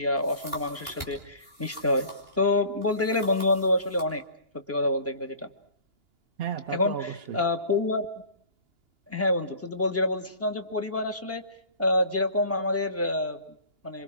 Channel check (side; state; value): left; late; 2.9 ms